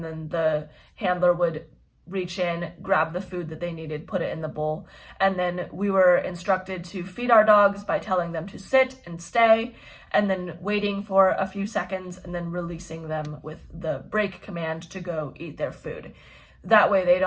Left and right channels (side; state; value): both; identical; correlation 1.00